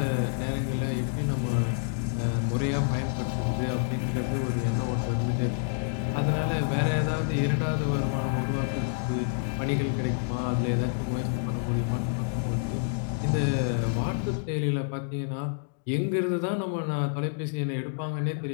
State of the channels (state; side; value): silent; right; digital silence